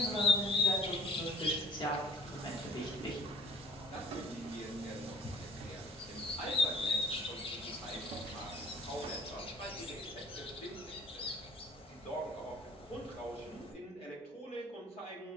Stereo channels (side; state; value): both; normal; correlation 0.50